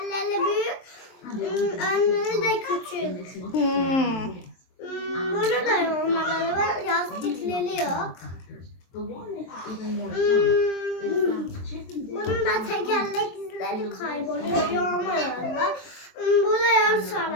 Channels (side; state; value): right; late; 23 ms